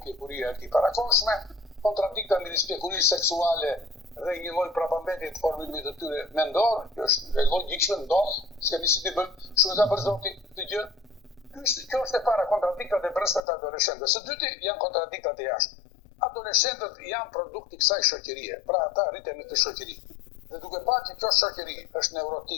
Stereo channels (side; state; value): right; drops out; at 13.4 s